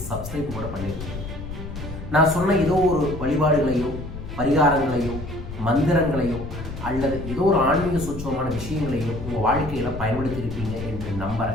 சப்ஸ்கிரைப் கூட பண்ணியிருப்பீங்க. நான் சொன்ன ஏதோ ஒரு வழிபாடுகளையோ பரிகாரங்களையோ மந்திரங்களையோ அல்லது ஏதோ ஒரு ஆன்மீக சூட்சமான விஷயங்களையோ உங்கள் வாழ்க்கையில் பயன்படுத்தியிருப்பீங்க என்று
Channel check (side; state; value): left; noise; rumble, 9 dB below the sound